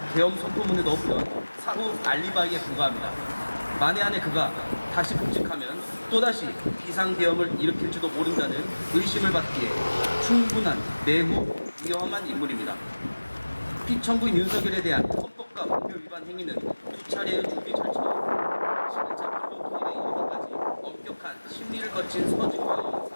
계엄 선포문에 넣었던 사후 알리바이에 불과합니다. 만에 안에 그가 다시 복직하면 또다시 비상계엄을 일으킬지도 모른다는 의심을 받기에 충분한 매우 위험한 인물입니다. 피청구인 윤석열에 대한 헌법과 법률 위반 행위는 두 차례의 준비 절차와 11차 불법행위에 이르기까지 엄격한 심리를 거친 서증과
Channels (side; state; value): both; inverted; correlation -1.00